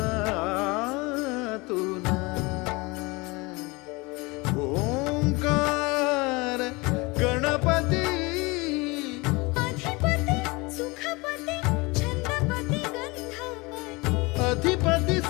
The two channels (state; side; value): quieter; right; 25.2 dB